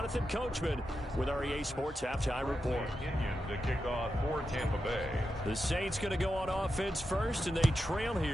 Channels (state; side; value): normal; both; correlation 0.88